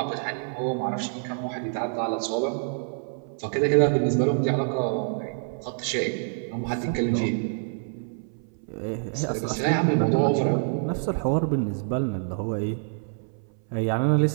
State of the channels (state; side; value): silent; left; 60 dB below the other